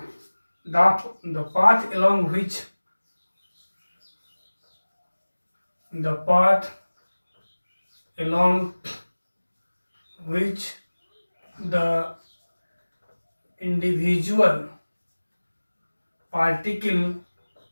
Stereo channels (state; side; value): inverted; both; correlation -1.00